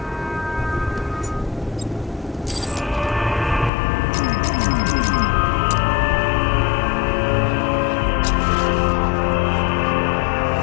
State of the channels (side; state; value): right; drops out; at 3.7 s